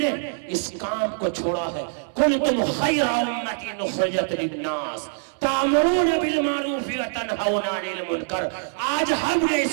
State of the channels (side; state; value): left; silent; 63 dB below the other